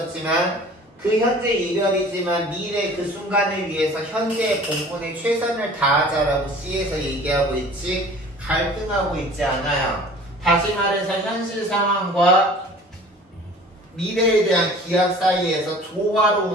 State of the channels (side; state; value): both; normal; correlation 0.46